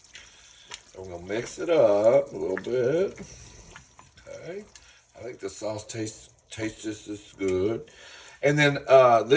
I'm going to mix it up a little bit. Okay. I think the sauce tastes just as good. And then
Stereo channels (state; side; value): identical; both; correlation 1.00